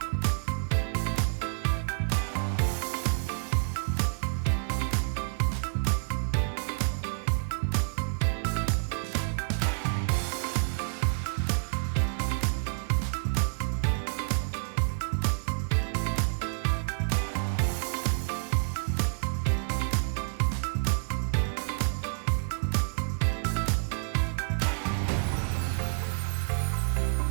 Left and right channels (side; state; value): left; silent; 59 dB below the other